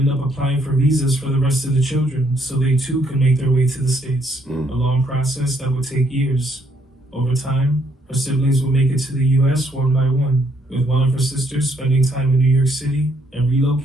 up applying for visas for the rest of the children so they too could make their way to the States, a long process that would take years. Over time, her siblings would make it to the U.S. one by one, with one of her sisters spending time in New York City and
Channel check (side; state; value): both; normal; correlation 0.69